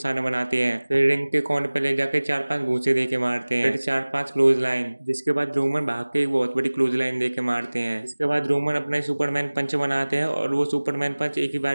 बनाते हैं। फिर रिंग के कोने पे ले जाके 4-5 घूंसे देके मारते हैं, फिर 4-5 क्लोज लाइन। जिसके बाद रोमन भाग के एक बहुत बड़ी क्लोज लाइन देके मारते हैं। इसके बाद रोमन अपना सुपरमैन पंच बनाते हैं और वो सुपरमैन पंच एक ही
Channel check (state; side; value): inverted; both; correlation -1.00